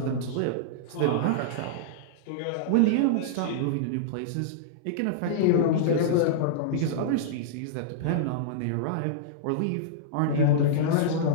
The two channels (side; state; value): both; different; correlation -0.02